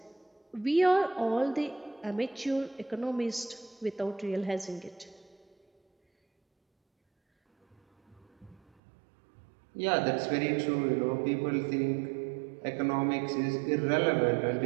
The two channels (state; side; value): drops out; left; at 8.7 s